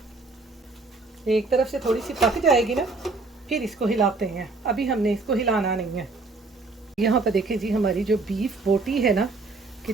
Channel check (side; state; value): left; quieter; 3.6 dB